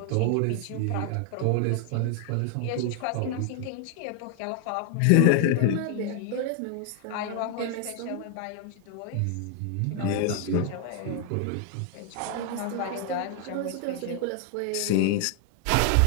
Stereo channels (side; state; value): both; different; correlation 0.00